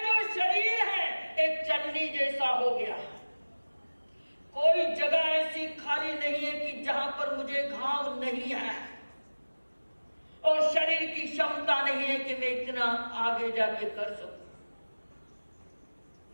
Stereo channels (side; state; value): both; inverted; correlation -1.00